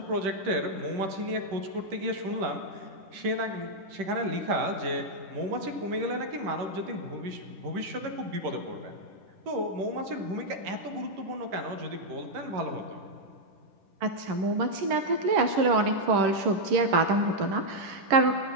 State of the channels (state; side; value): late; left; 10 ms